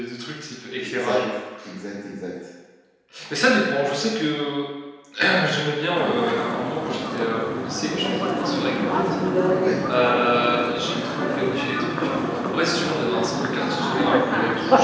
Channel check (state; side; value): identical; both; correlation 1.00